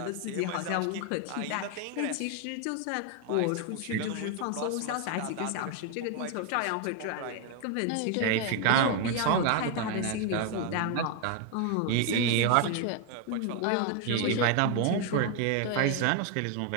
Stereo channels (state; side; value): different; both; correlation 0.01